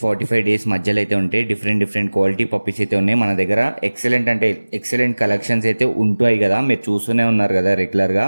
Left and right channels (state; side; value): inverted; both; correlation -1.00